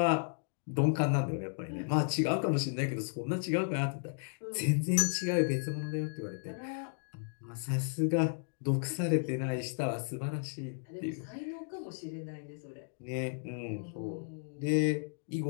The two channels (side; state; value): right; silent; digital silence